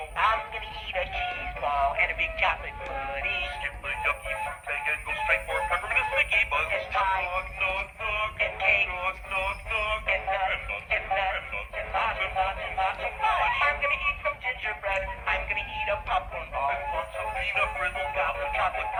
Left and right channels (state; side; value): identical; both; correlation 1.00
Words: I'm gonna eat a cheese ball and a big chocolate pudding. Skip the yucky fruit bag and go straight for peppermint sticky buns. And pie. Nog, nog, nog. And cake. Nog, nog, nog. And nuts. And nuts. And lots and lots and lots of fudge. I'm gonna eat some gingerbread. I'm gonna eat a popcorn ball. And lots of peanut brittle gobs of chocolate